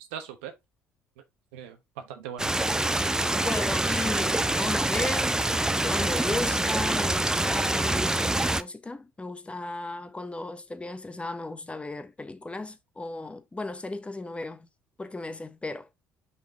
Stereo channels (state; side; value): normal; both; correlation 0.75